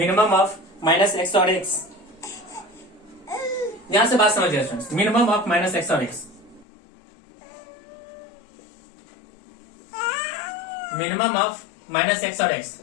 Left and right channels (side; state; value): right; drops out; at 6.7 s